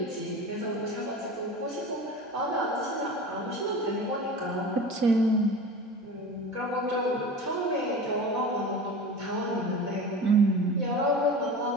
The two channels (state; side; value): normal; both; correlation 0.33